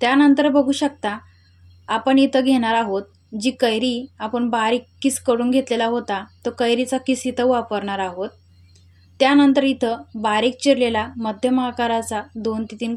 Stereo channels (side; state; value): both; identical; correlation 1.00